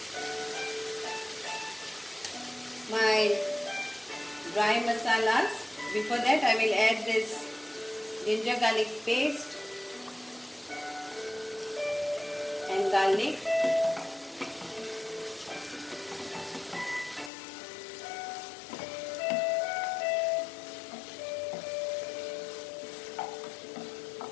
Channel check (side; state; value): right; drops out; at 17.3 s